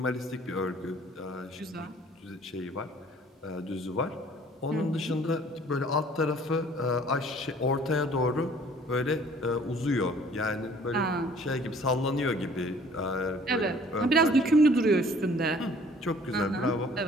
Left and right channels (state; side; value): normal; both; correlation 0.54